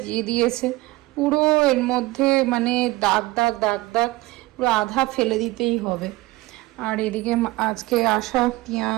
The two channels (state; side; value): quieter; left; 19.9 dB